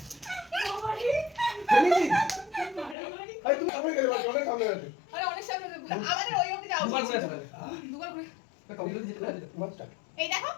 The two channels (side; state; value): right; drops out; at 3.0 s